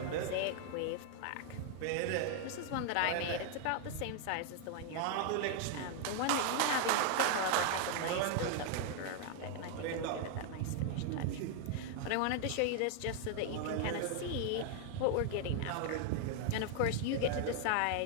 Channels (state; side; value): different; both; correlation 0.00